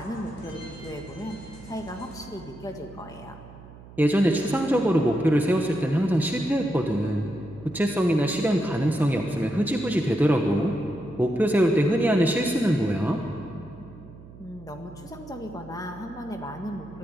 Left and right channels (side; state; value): right; noise; hum, 19 dB below the sound